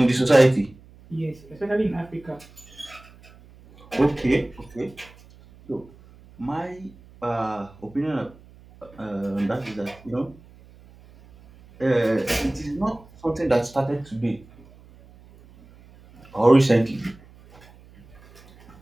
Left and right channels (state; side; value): noise; right; hum, 24 dB below the sound